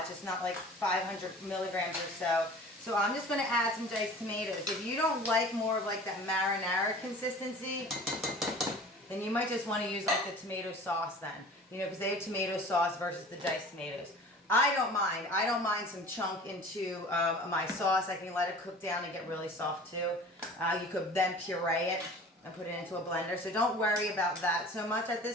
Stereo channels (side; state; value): both; normal; correlation 0.42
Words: It's not like 500 milligrams or so. So I'm just going to add some diced tomatoes. If you don't like more of like that marinara consistency, then you might just want to use like the tomato sauce then. You know, because they have tomato sauce versus the diced tomatoes. I don't mind. I don't mind some chunk into my sauce. I can let it cook down and get really soft too. You could then puree it and put it into a blender. So don't worry about that so much at